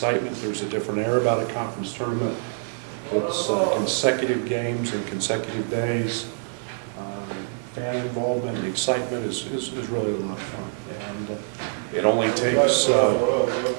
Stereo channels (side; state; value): left; silent; 62 dB below the other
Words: There's a different air about a conference tournament. It's consecutive games and consecutive days. Fan involvement and excitement is really a lot of fun, and it only takes a